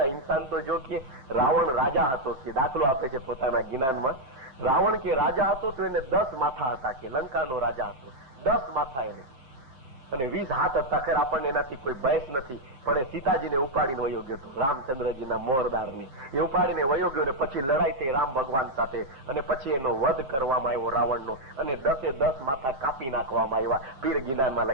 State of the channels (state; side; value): late; left; 7.7 ms